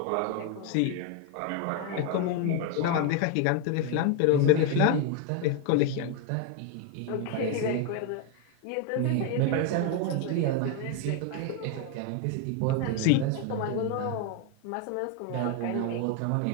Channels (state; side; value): different; both; correlation 0.01